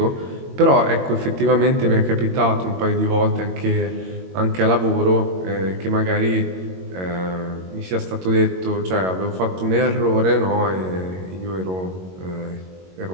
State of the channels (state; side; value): late; left; 22 ms